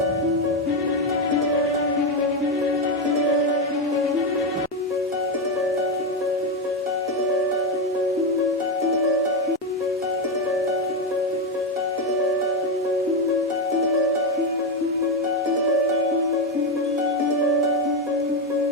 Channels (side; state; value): both; normal; correlation 0.08